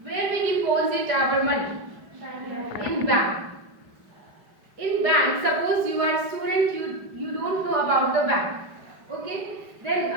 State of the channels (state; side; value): late; left; 4.8 ms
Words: Where we deposit our money? In bank. In bank, suppose you are student, you don't know about the bank. Okay, then